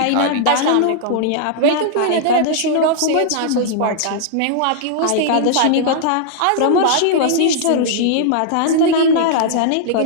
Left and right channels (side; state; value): both; different; correlation -0.01